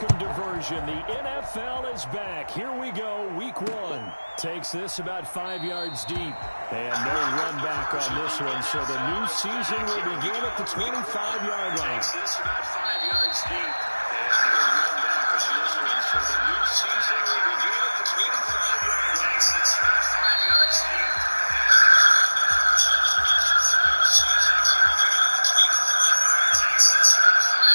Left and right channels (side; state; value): both; inverted; correlation -1.00